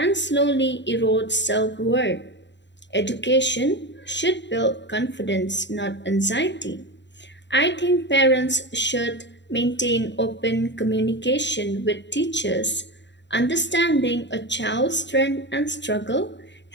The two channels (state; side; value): late; right; 0.52 ms